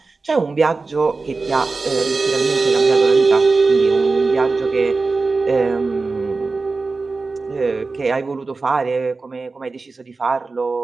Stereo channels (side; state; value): left; quieter; 3.9 dB